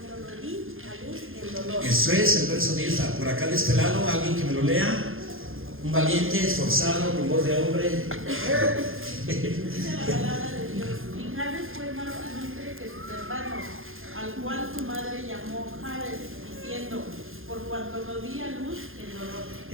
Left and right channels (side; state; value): left; late; 0.60 ms